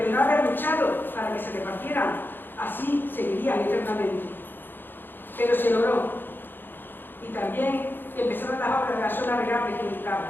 el no haber luchado para que se repartieran, así seguirían eternamente. Pero se logró. Y también empezaron las obras de la zona regable que buscaba.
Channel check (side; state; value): right; late; 0.096 ms